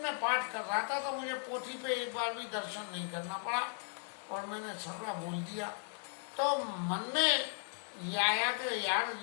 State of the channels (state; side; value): silent; right; 53 dB below the other